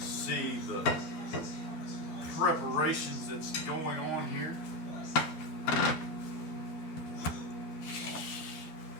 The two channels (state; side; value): late; right; 13 ms